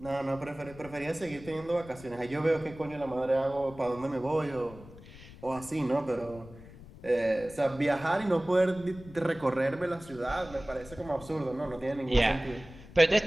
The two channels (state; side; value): noise; left; rumble, 18 dB below the sound